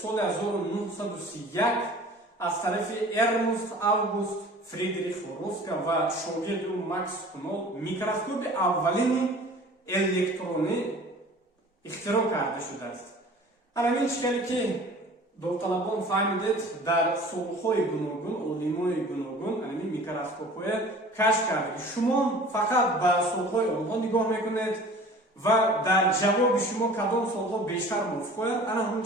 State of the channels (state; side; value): normal; both; correlation 0.45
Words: соли 1931 аз тарафи Эрнст Август Фридрих Роска ва шогирди Макс Кунол микроскоби аввалини электронӣ ихтироъ карда шудааст. Ҳамин чӣ хеле ки довталабон фаҳмидед, дар солҳои гуногун олимони гуногун ҳамин микроскопҳое кашф карда. Шумо фақат ба солҳои онҳо нигоҳ мекунед, ва дар ҷавоби шумо кадом суолҳо бештар мувофиқояд, ана ҳамн